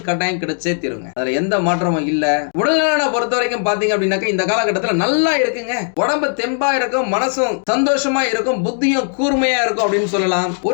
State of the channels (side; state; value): right; silent; 63 dB below the other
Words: கட்டாயம் கிடைச்சே தீருங்க. அதுல எந்த மாற்றமும் இல்ல. உடல்நலனை பொறுத்த வரைக்கும் பாத்தீங்க அப்படின்னாக்க இந்த காலகட்டத்துல நல்லா இருக்குங்க. உடம்பு தெம்பா இருக்கும், மனசும் சந்தோஷமா இருக்கும், புத்தியும் கூர்மையா இருக்கும் அப்படின்னு சொல்லலாம்.